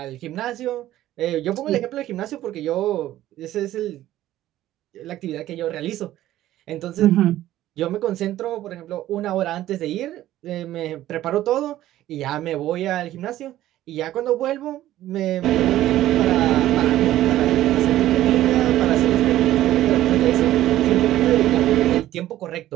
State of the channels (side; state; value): left; quieter; 14.0 dB